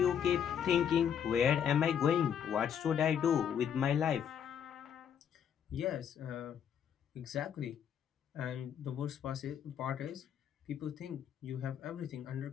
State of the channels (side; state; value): right; quieter; 8.5 dB